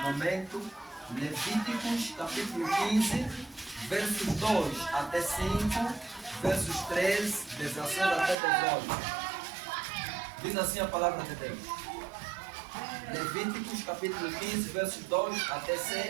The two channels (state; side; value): drops out; left; at 8.3 s